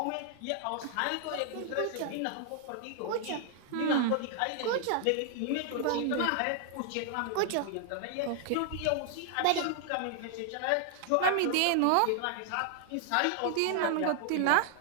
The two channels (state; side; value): different; both; correlation 0.00